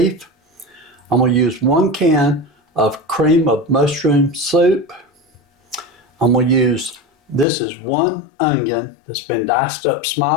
I'm going to use 1 can of cream of mushroom soup. I'm going to use, this is 1 onion that's been diced up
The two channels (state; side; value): drops out; right; at 7.5 s